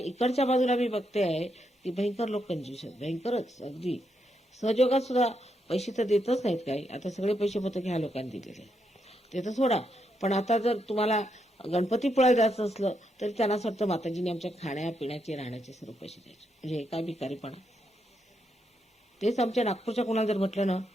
बाजूला मी बघते आहे की भयंकर लोक कंजूस आहेत, भयंकरच. अगदी सहयोगात सुद्धा पैसे तर देतच नाहीत काही. आता सगळे पैसे पत्र ह्या लोकांनी दिलेले ते तर सोडा. पण आता जर तुम्हाला गणपतीपुळ्याला जायचं असलं तरी त्यांना असं वाटतं माताजीने आमच्या खाण्यापिण्याचे राहण्याचे सर्व पैसे द्यायचे. म्हणजे हे काय भिकारीपणा. तेच आमच्या नागपूरच्या कोणाला जर म्हटलं ना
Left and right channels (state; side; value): normal; both; correlation 0.80